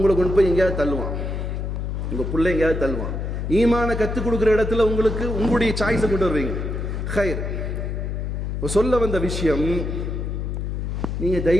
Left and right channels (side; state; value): left; noise; hum, 3 dB below the sound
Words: கொண்டு போய் எங்கேயாவது தள்ளுவான், உங்கள் பிள்ளை எங்கேயாவது தள்ளுவான். ஈமான கற்றுக் கொடுக்குற இடத்துல உங்களுக்கு உங்களுடைய சாய்ஸை கொண்டு வருவீங்க. ஹைர், சொல்ல வந்த விஷயம், நீங்கள்